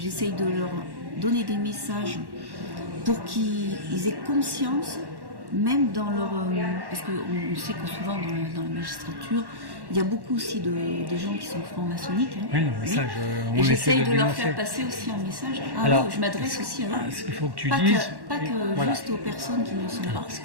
de leur donner des messages pour qu'ils aient conscience, même dans leur... parce qu'on sait que souvent dans la magistrature, il y a beaucoup aussi de gens qui sont francs-maçonniques. Hein. Oui, le message, et j'essaye de leur faire passer aussi un message. Alors, oui, je m'adresse aussi à eux. Ce qu'il faut que tu dises... Pas que juste aux personnes qui ne sont pas. Ce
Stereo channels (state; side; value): late; left; 1.1 ms